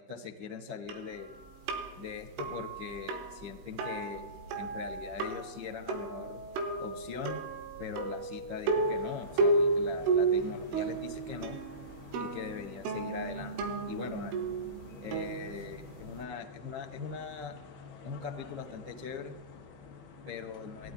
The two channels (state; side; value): late; left; 16 ms